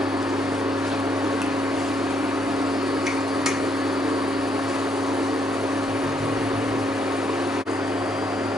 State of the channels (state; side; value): normal; both; correlation 0.73